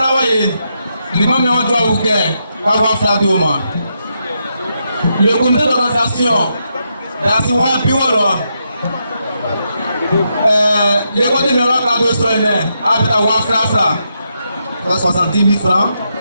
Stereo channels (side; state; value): both; inverted; correlation -0.82